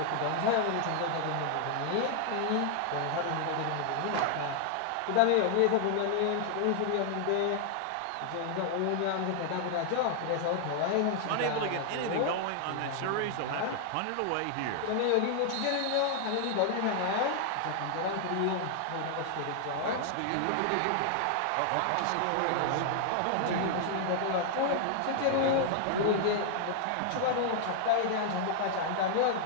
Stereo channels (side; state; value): both; different; correlation 0.00